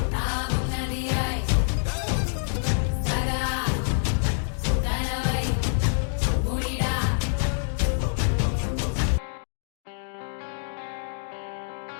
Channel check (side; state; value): right; silent; digital silence